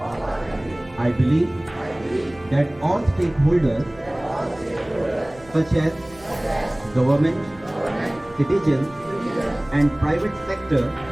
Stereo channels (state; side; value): noise; right; hum, 23 dB below the sound